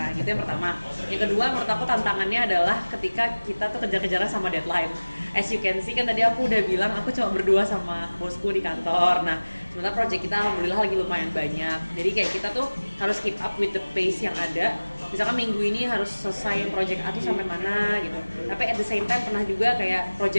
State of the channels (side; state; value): both; inverted; correlation -1.00